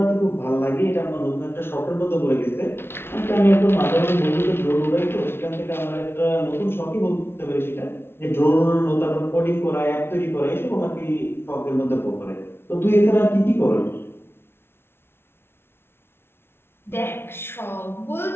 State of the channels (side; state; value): right; late; 0.12 ms